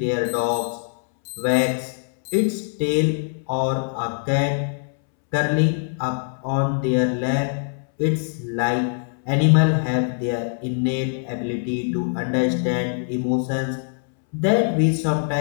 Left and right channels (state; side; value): silent; right; 64 dB below the other